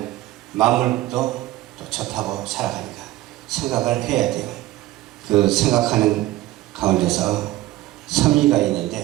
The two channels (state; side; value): quieter; left; 16.4 dB